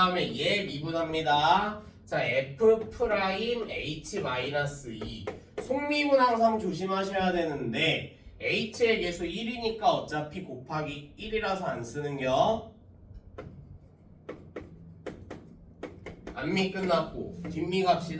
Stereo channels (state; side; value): identical; both; correlation 1.00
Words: 얘 미분합니다. 자, F'H-2 속미분 항상 조심하셔야 되는데 H의 개수 1이니까 어차피 곱하기 1이라서 안 쓰는겨. 앞미 끝났고 뒷미